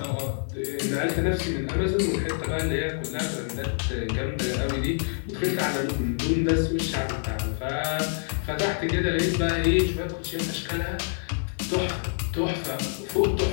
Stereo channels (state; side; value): silent; right; 60 dB below the other